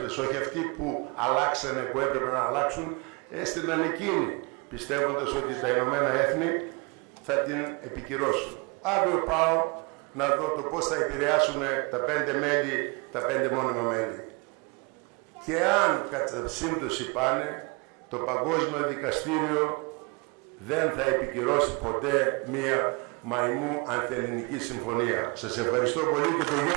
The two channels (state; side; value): quieter; left; 30.2 dB